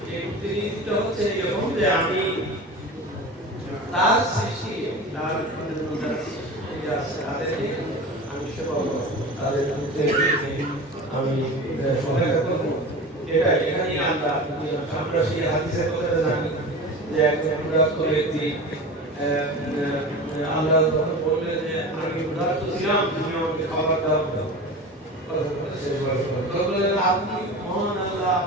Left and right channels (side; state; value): both; normal; correlation 0.32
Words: এই প্রতিনিধিটা হচ্ছে এরকম যে আমি তার সৃষ্টি তার তাদেরকে আমি সেবা করব, তাদের আমি সহায়তা করব। এটা এখানে আমরা সেই হাদিসের কথা জানি যে একজন ক্ষুধার্ত ব্যক্তি আল্লাহ যখন বললেন যে আমি ক্ষুধার্ত ছিলাম, তুমি আমাকে খাবার দাও, আপনি মহান আল্লাহ,